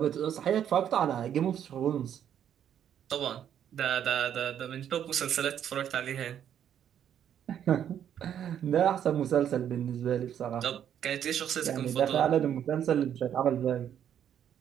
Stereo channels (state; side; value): quieter; left; 9.6 dB